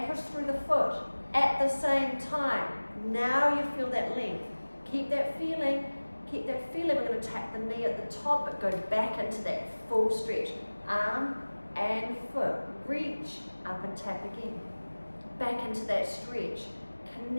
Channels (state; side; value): inverted; both; correlation -1.00